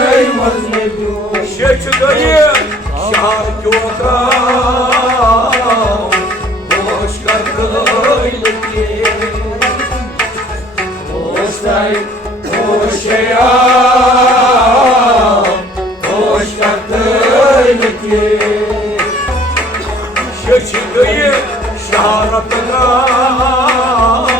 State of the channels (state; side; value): normal; both; correlation 0.55